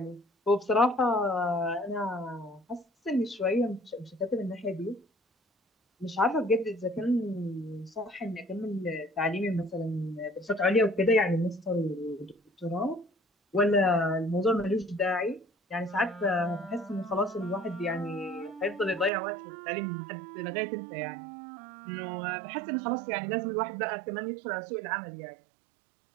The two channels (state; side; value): drops out; left; at 19.1 s